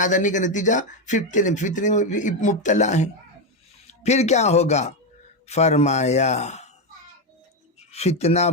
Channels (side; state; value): both; normal; correlation 0.08